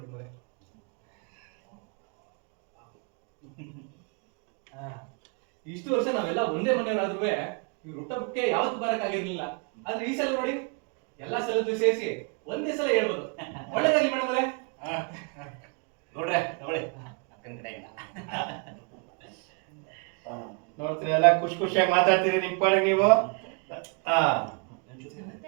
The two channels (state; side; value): quieter; left; 34.7 dB